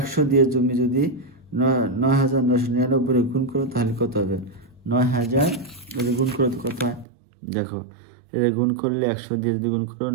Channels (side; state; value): left; drops out; at 7.1 s